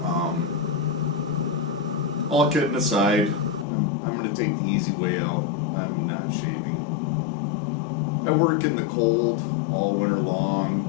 All kidding aside, I'm going to take the easy way out. I'm not shaving. I work in the cold all winter long,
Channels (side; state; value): right; drops out; at 3.7 s